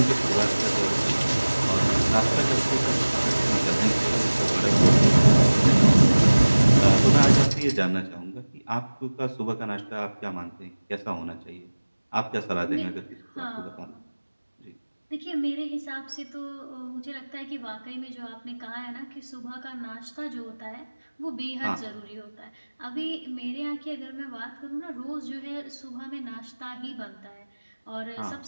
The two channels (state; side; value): inverted; both; correlation -1.00